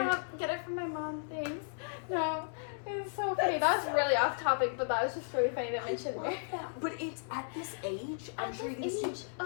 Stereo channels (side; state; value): right; silent; 55 dB below the other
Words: get it from my mom, thanks. No, it was so funny. That was really off topic, but that was just really funny to mention love there. that. But it's at this age, I'm At sure you this can age. see,